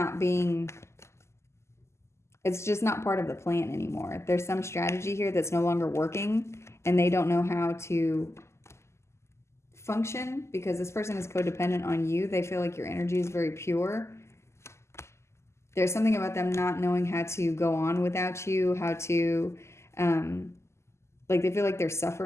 being, it's just not part of the plan anymore. There's some strategy here that's no longer working, and they don't know how to function because this person is codependent on you. They feel like your energy is very pure. There's something about them not knowing how to go on without you, how to, like they feel like they're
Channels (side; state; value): right; late; 0.13 ms